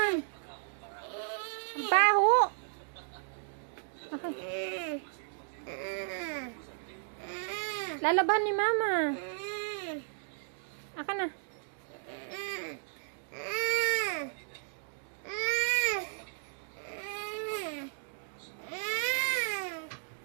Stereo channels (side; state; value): left; silent; digital silence